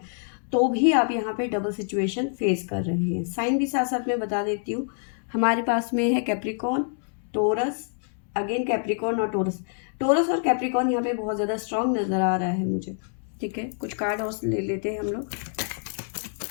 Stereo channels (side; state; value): right; silent; 61 dB below the other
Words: तो भी आप यहाँ पे डबल सिचुएशन फेस कर रहे हैं। साइन भी साथ साथ में बता देती हूँ, हमारे पास में है कैप्रिकॉन, टोरस, अगेन कैप्रिकॉन और टोरस। टोरस और कैप्रिकॉन यहाँ पे बहुत ज़्यादा स्ट्रांग नज़र आ रहा है मुझे, ठीक है। कुछ कार्ड और ले लेते हैं हम लोग।